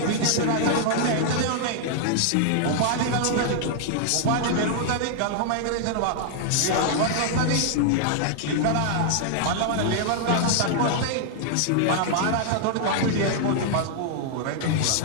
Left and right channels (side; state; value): both; different; correlation -0.01